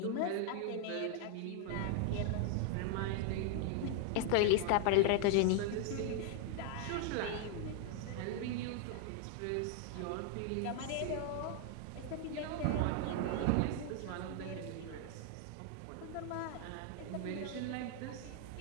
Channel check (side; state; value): both; different; correlation 0.00